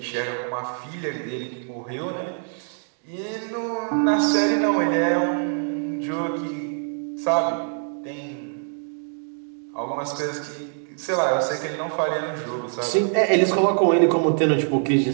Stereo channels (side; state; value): left; silent; 62 dB below the other